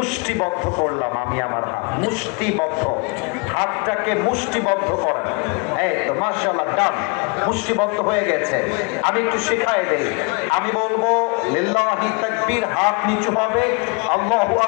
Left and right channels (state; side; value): quieter; right; 32.3 dB